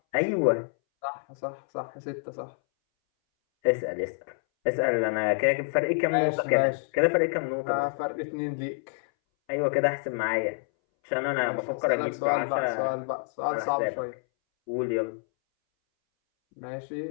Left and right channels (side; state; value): right; silent; 60 dB below the other